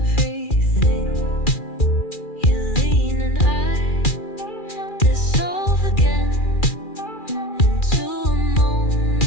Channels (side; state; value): right; late; 2.4 ms